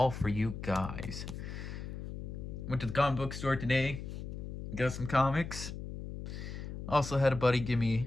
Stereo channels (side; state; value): left; noise; hum, 8 dB below the sound